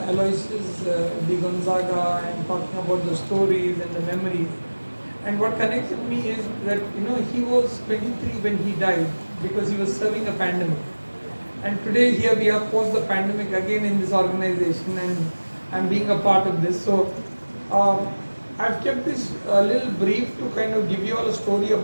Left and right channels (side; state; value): both; inverted; correlation -1.00